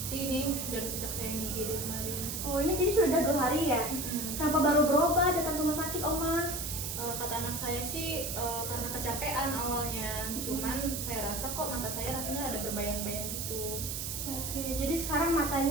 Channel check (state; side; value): noise; right; hiss, 4 dB below the sound